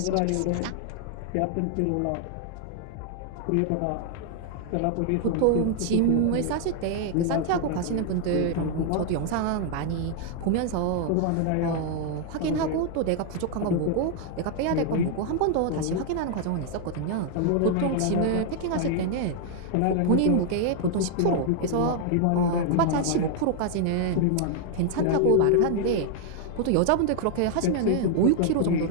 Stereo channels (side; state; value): both; different; correlation 0.00